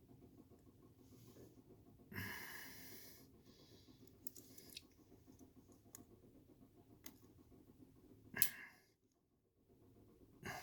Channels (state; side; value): identical; both; correlation 1.00